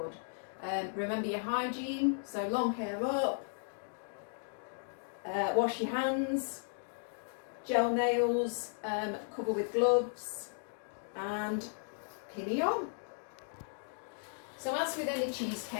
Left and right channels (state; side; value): silent; right; digital silence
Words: Remember your hygiene, so long hair up, wash your hands, gel nails, cover with gloves, and pinny on. So as with any